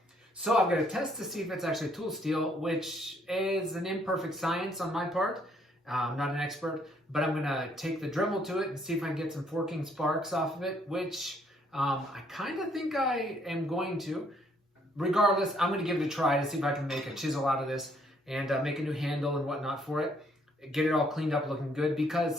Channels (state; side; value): normal; both; correlation 0.67